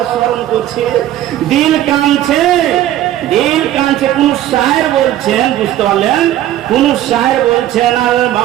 স্মরণ করছে, দিল কাঁদছে, দিল কাঁদছে। কোন শায়ের বলছেন, বুঝতে পারলেন? কোন শায়ের বলছেন আল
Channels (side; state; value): left; quieter; 13.0 dB